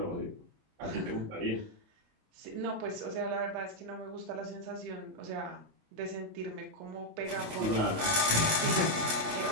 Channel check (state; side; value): late; left; 28 ms